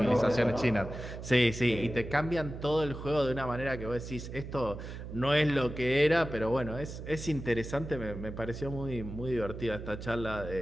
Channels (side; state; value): right; noise; hum, 9 dB below the sound